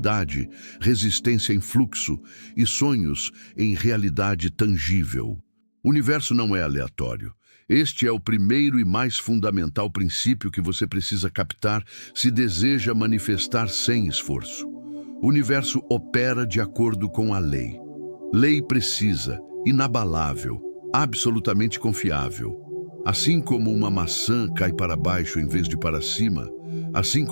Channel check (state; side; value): inverted; both; correlation -1.00